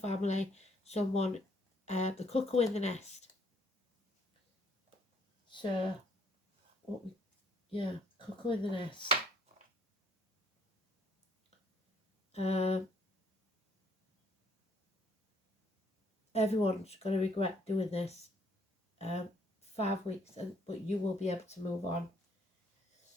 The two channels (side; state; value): both; normal; correlation 0.64